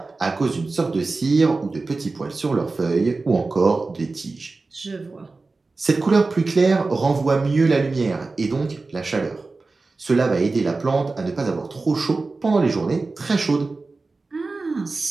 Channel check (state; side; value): quieter; left; 3.7 dB